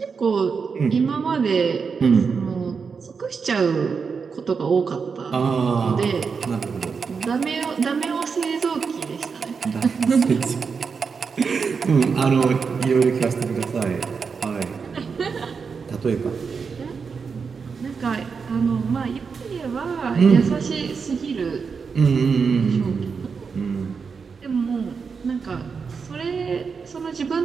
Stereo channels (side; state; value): left; quieter; 5.5 dB